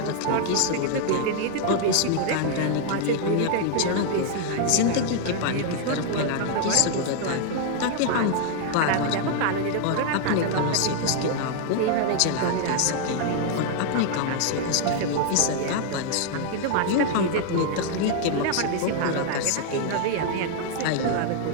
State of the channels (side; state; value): both; different; correlation 0.00